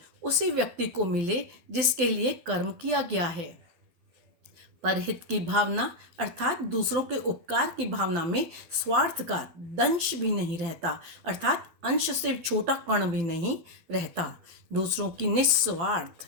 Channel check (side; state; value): left; late; 12 ms